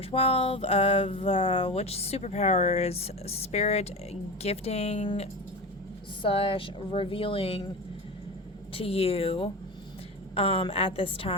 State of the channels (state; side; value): normal; both; correlation 0.26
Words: 12 of which superpower is spirit gifting / revealing to you at this